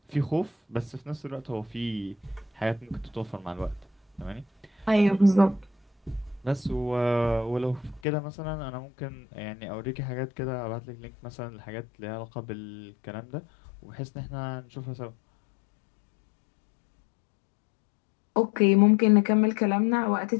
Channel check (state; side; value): drops out; right; at 8.0 s